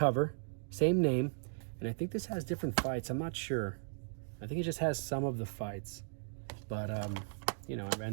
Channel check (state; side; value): silent; left; digital silence